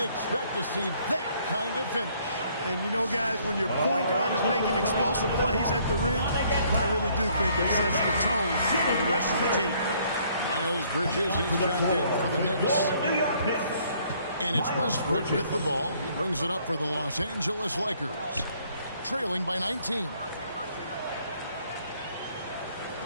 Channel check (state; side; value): inverted; both; correlation -0.64